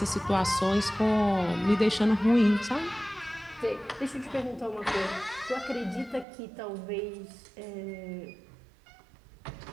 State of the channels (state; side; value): drops out; left; at 6.2 s